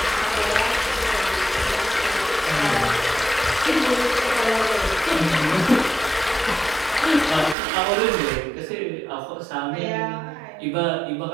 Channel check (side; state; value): left; drops out; at 7.6 s